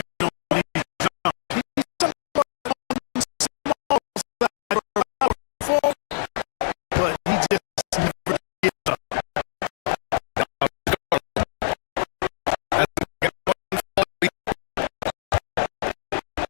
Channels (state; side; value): silent; right; digital silence